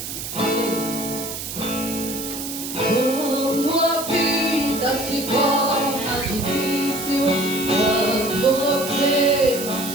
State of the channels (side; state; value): right; noise; hiss, 7 dB below the sound